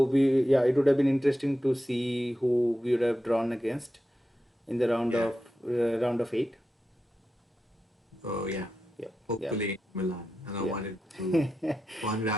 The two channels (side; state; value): both; normal; correlation 0.90